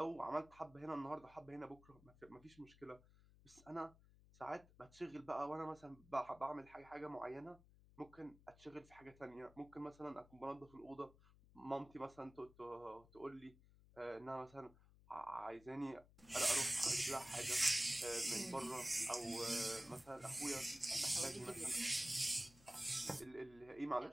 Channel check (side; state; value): left; noise; hum, 24 dB below the sound